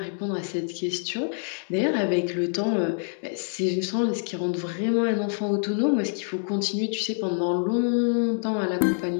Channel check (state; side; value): silent; right; digital silence